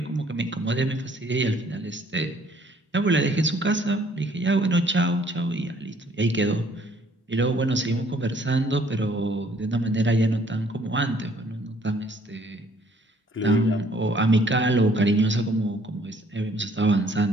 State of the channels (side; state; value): both; normal; correlation 0.61